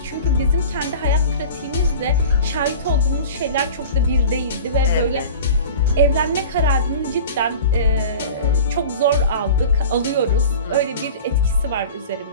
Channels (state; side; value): inverted; both; correlation -0.37